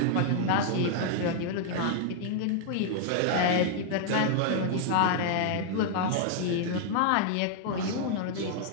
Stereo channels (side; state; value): both; different; correlation -0.01